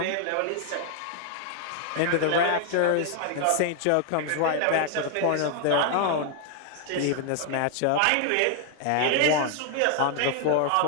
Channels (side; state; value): both; different; correlation 0.00